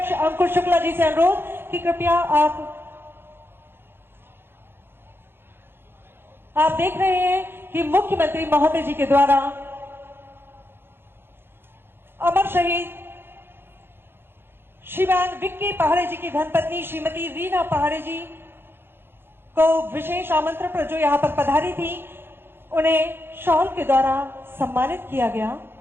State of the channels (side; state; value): left; late; 0.11 ms